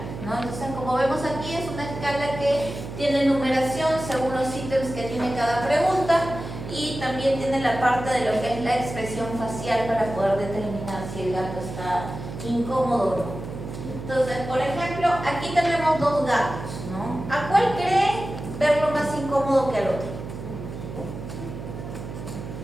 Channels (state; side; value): noise; right; hum, 9 dB below the sound